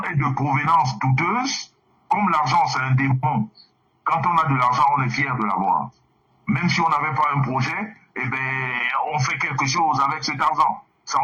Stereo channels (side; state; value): both; identical; correlation 1.00